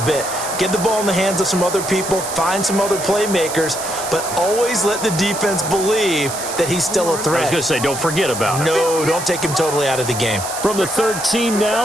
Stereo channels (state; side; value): noise; right; hiss, 7 dB below the sound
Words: Get the ball in the hands of some other people, find some other playmakers, but always let the defense believe that he's still a threat. I was going to say, don't forget about it. No, don't take him totally out of the game. From the 13